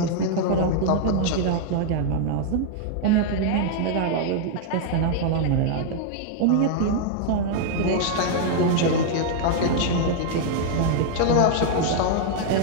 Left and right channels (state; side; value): different; both; correlation -0.01